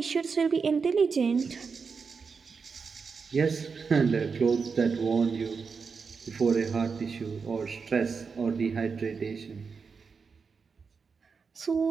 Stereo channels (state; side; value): quieter; left; 5.3 dB